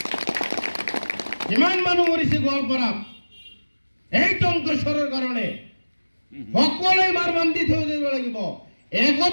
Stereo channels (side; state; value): both; inverted; correlation -1.00